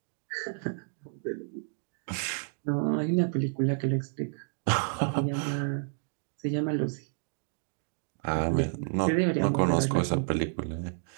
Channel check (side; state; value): left; silent; 58 dB below the other